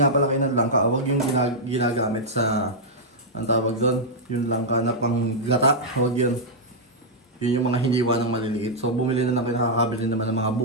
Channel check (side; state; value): both; normal; correlation -0.06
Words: pala kayo ng langka. Huwag yung ginagamit sa, ang tawag doon, yung langka na panggata. Huwag yun. Yun yung mga hiniwa ng maliliit. So, bumili na lang kayo, nakakabili naman ng mga